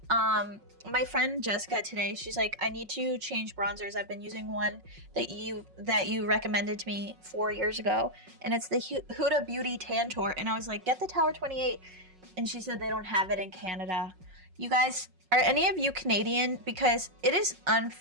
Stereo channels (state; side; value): late; left; 5.4 ms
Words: My friend Jessica today, she's like, I need to change bronzers. I've been using one that you recommended to me 4 years ago, and it's the Huda Beauty Tantour. And I was like, get the Tower 28. And she said they don't have it in Canada. You guys, are any of you Canadian? Because it is